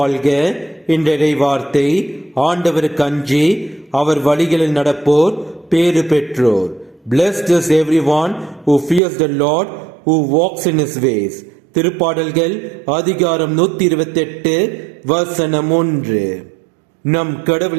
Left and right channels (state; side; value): drops out; left; at 9.0 s